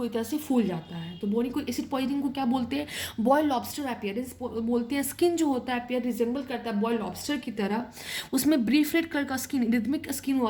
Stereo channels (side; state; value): both; identical; correlation 1.00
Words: तरह से फूल जाता है। तो बोरिक एसिड पॉइजनिंग को क्या बोलते हैं, बॉइल्ड लॉबस्टर अपीयरेंस बोलते हैं। स्किन जो होता है अपीयर रिजेंबल करता है बॉइल्ड लॉबस्टर की तरह, उसमें ब्रीफ रेड कलर का स्किन, रिदमिक स्किन हो